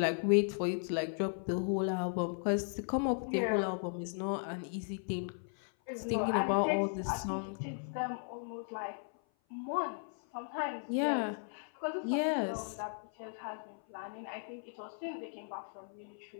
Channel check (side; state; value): right; silent; 54 dB below the other